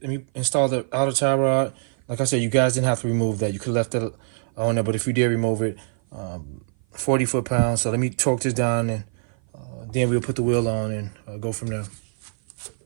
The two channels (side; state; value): left; silent; 56 dB below the other